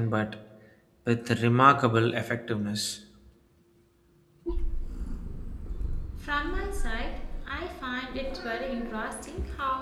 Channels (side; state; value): both; identical; correlation 1.00